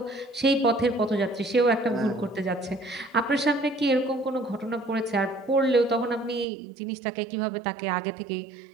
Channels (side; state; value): left; drops out; at 6.5 s